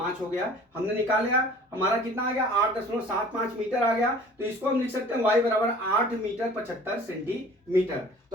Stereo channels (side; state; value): both; normal; correlation 0.47